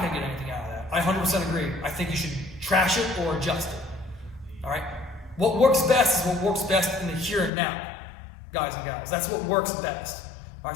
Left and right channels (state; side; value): drops out; right; at 7.5 s